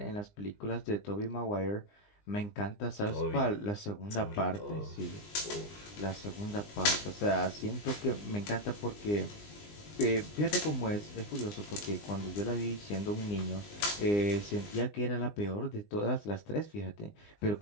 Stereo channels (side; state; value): right; late; 20 ms